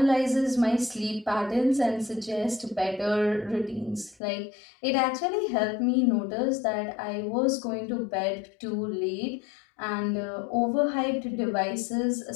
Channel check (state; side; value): drops out; right; at 4.2 s